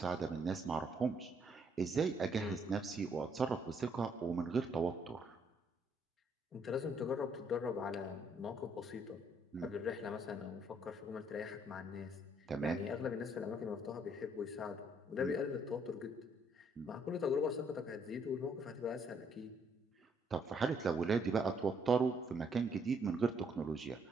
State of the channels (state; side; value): normal; both; correlation 0.69